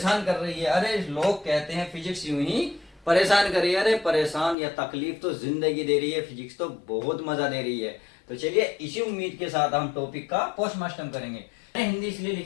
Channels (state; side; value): drops out; right; at 4.5 s